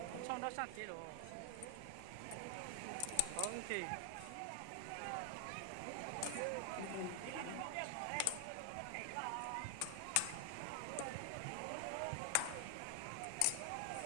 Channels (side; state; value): both; different; correlation 0.00